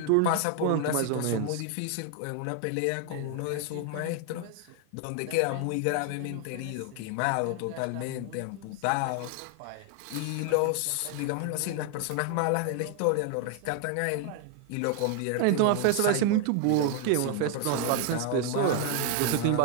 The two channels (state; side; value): different; both; correlation 0.00